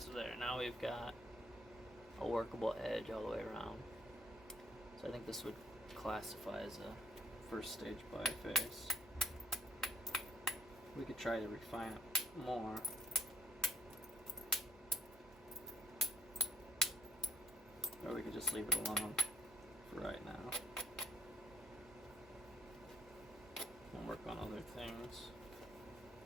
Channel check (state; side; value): normal; both; correlation 0.62